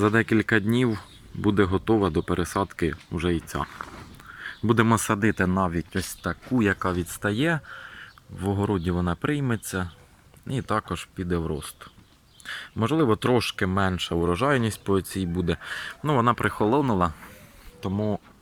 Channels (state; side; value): identical; both; correlation 1.00